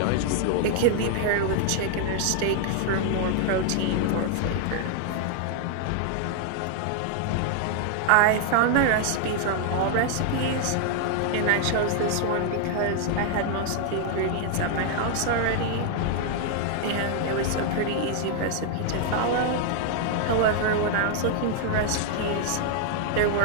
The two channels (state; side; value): different; both; correlation 0.00